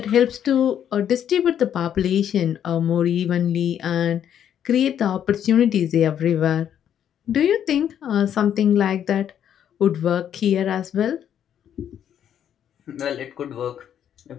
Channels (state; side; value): quieter; right; 9.5 dB